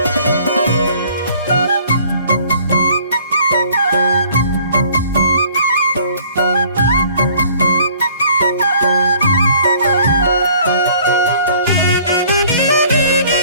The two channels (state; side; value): inverted; both; correlation -0.56